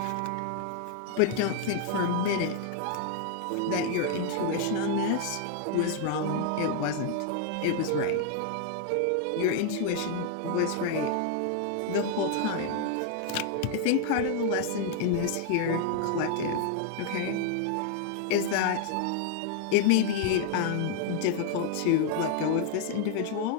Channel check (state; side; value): different; both; correlation 0.00